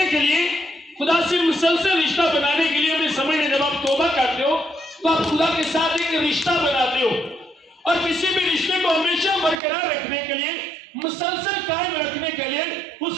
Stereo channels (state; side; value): drops out; left; at 9.6 s